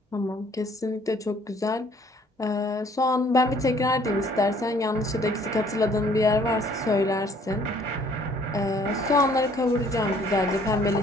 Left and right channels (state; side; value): normal; both; correlation 0.60